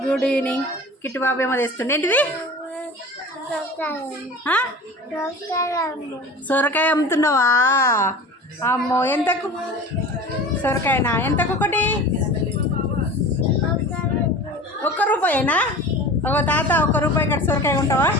good evening. Kittu Babu ఏమో తెస్తుండే ఏంటిది? సొరకాయ అమ్ముతున్నావా? అమ్మో, ఎంతకు సొరకాయనా? ఎంతకు ఒకటి? ₹1 ఒక తాత ₹1 ఇక్కడ సొరకాయ ఉంటావా?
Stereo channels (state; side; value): normal; both; correlation 0.37